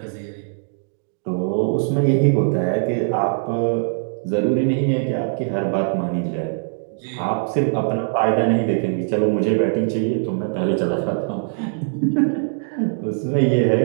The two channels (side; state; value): left; silent; digital silence